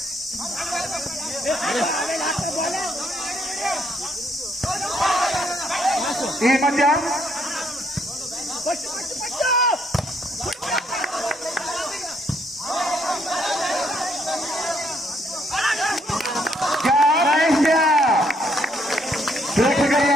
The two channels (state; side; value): normal; both; correlation 0.70